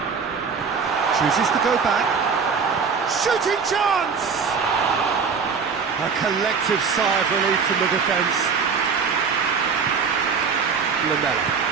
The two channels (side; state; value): left; quieter; 5.7 dB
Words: Chooses to go back. Shooting chance! A collective sigh of relief from the defence. Lamela.